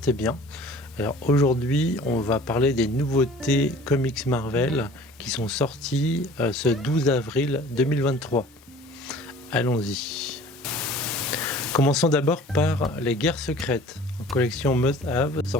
bien. Alors aujourd'hui on va parler des nouveautés comics Marvel qui sont sorties ce 12 avril 2023. Allons-y. Commençons d'abord par les Guerres secrètes, en collection Must Have,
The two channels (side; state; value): both; normal; correlation 0.47